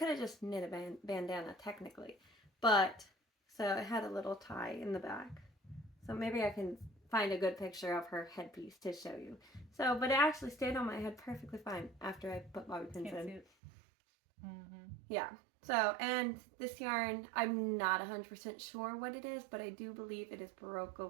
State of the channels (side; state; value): left; drops out; at 13.5 s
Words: have just knit a bandana technically. But, so it had a little tie in the back. So maybe I can find a good picture of her headpiece to show you. So, but it actually stayed on my head perfectly fine after I put bobby pins in. Yeah. So, and this yarn, I'm not 100% sure what it is, but I do believe it is Baroque